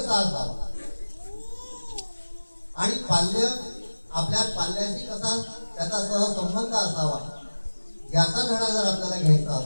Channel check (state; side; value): inverted; both; correlation -1.00